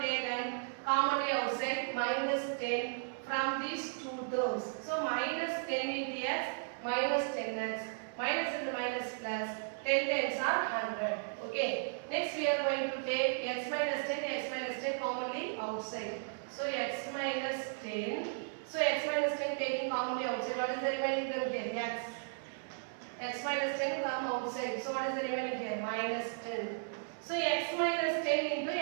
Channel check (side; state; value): left; silent; digital silence